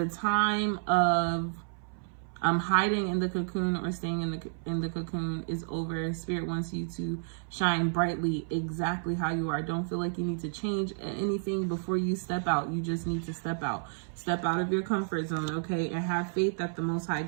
time of hiding in the cocoon or staying in the cocoon is over. Spirit wants you to shine brightly exactly how you are. Don't feel like you need to change anything before you step out. You just need to step out of your comfort zone. Okay, and have faith that the Most High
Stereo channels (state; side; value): silent; left; 57 dB below the other